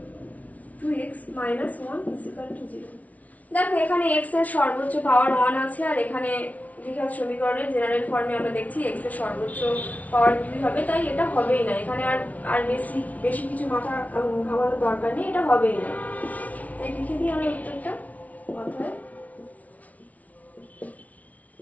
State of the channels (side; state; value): right; late; 0.070 ms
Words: দেখো এখানে x এর সর্বোচ্চ পাওয়ার 1 আছে, আর এখানে দ্বিঘাত সমীকরণের জেনারেল ফর্মে আমরা দেখছি x এর সর্বোচ্চ পাওয়ার 2 হবে, তাই এটা হবেই না। এখানে আর বেশি কিছু মাথা ঘামানোর দরকার নেই, এটা হবেই না। তাই লিখে দিই আমরা উত্তরটা অতএব